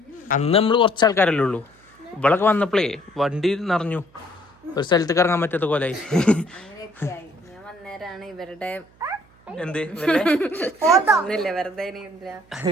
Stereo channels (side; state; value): right; noise; hum, 30 dB below the sound